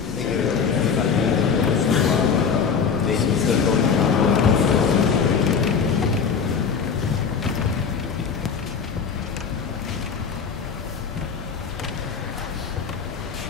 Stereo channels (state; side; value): quieter; right; 6.2 dB